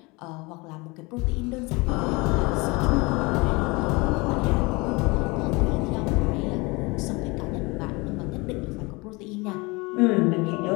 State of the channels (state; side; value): quieter; right; 25.6 dB